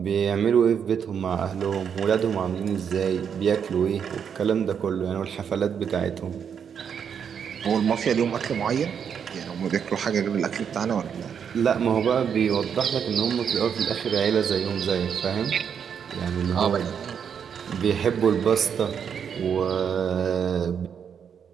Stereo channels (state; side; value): quieter; left; 7.5 dB